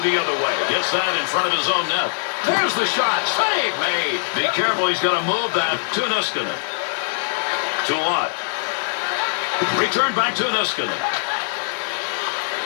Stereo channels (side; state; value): right; silent; digital silence